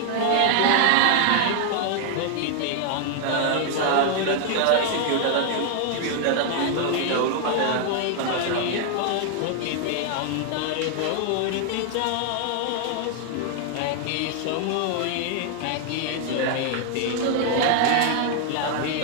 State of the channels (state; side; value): different; both; correlation 0.00